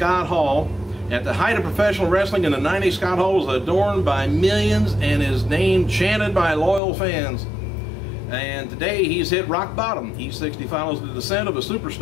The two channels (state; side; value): drops out; right; at 6.8 s